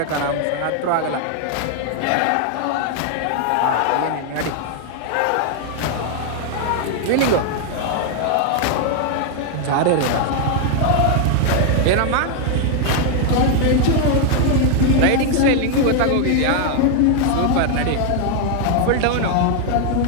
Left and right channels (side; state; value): both; different; correlation 0.00